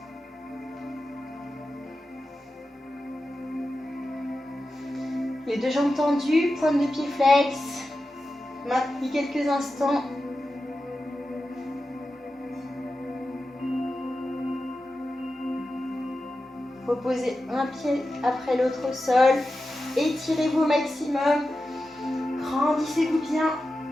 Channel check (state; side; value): normal; both; correlation 0.92